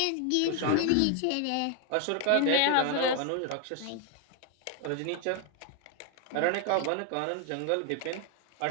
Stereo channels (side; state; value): both; different; correlation 0.01